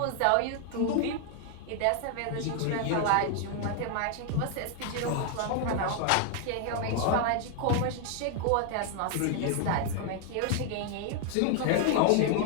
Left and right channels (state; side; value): different; both; correlation 0.00